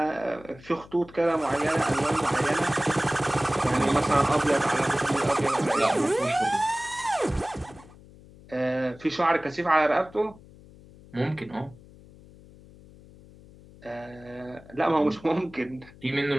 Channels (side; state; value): left; noise; hum, 22 dB below the sound